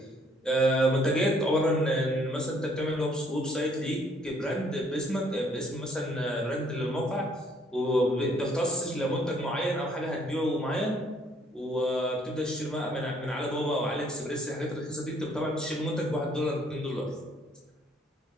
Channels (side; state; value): both; normal; correlation 0.64